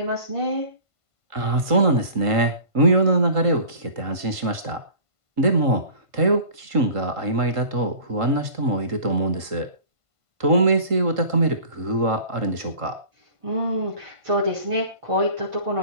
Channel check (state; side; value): late; left; 1.5 ms